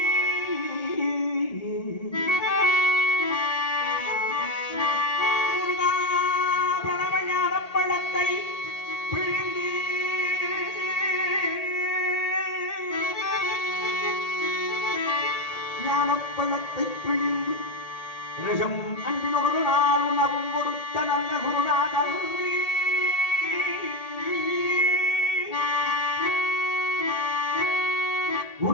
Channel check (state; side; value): late; right; 1.8 ms